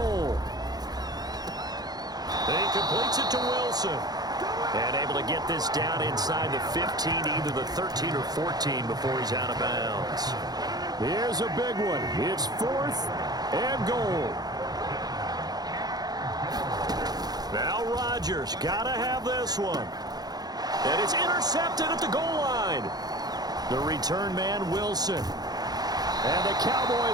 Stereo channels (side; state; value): left; late; 0.19 ms